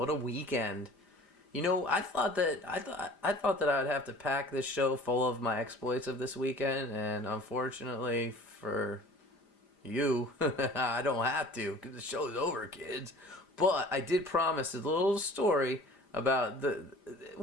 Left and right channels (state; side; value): late; right; 5.0 ms